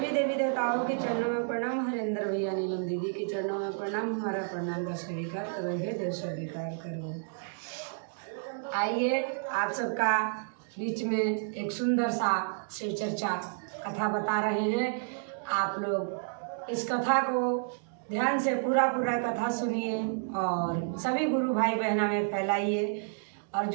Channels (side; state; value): left; silent; digital silence